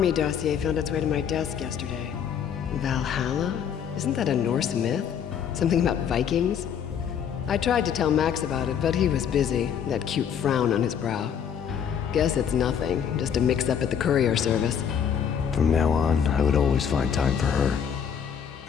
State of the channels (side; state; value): right; quieter; 8.0 dB